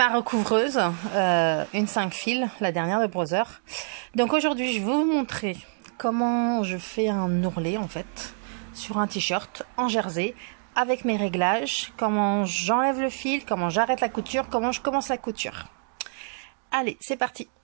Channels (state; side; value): silent; left; digital silence